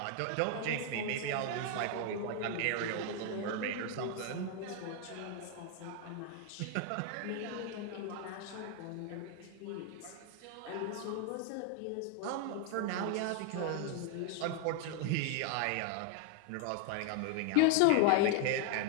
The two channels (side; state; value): both; different; correlation 0.01